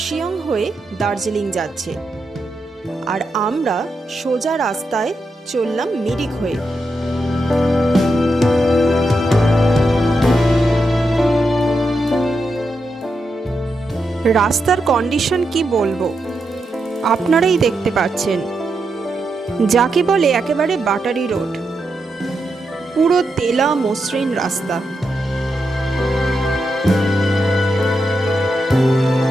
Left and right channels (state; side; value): normal; both; correlation 0.85